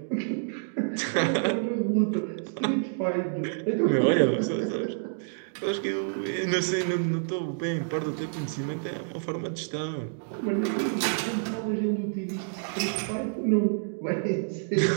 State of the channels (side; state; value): left; silent; digital silence